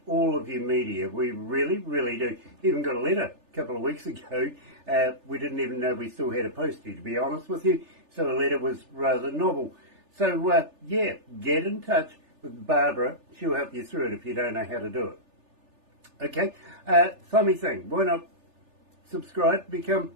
all of your media. We really, really do. Even got a letter a couple of weeks ago. We didn't even know we still had a postie, to be honest with you. So the letter was rather novel. So, yeah, get in touch with Barbara. She'll help you through it if you don't know how to do it. Okay? Funny thing. Why not subscribe, become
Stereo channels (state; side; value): late; left; 3.4 ms